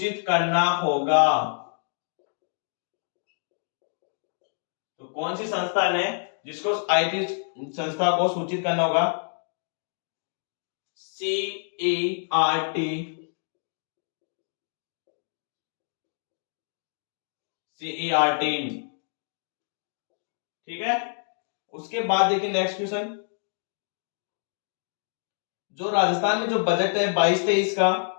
करना होगा? तो कौन सी संस्थान है जिसको आईटी संस्था को सूचित करना होगा? CERT। ठीक है, उसके बाद देखिए नेक्स्ट क्वेश्चन। जो राजस्थान में जो बजट है 22-23 का,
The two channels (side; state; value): right; silent; digital silence